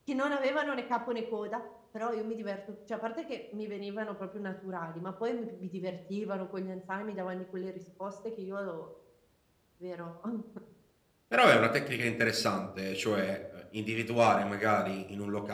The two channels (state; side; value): identical; both; correlation 1.00